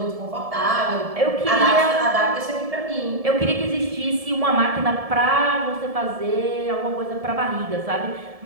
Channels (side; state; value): left; late; 1.7 ms